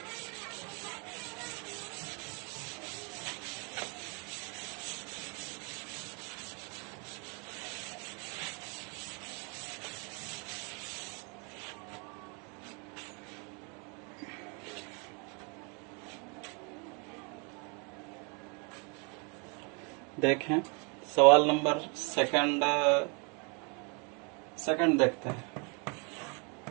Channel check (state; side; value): quieter; left; 34.3 dB